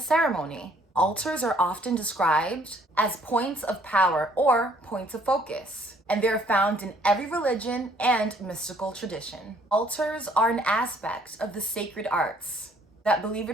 ceremony. Altars are often described as points of power or points of focus, and they're found in every religion and mystical tradition. Altars are an aspect of the sacred arts that, believe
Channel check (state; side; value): normal; both; correlation 0.62